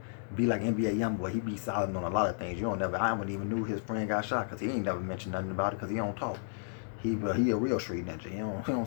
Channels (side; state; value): right; silent; digital silence